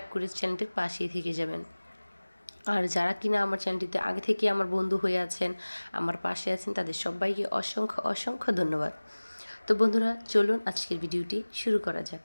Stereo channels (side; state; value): both; inverted; correlation -1.00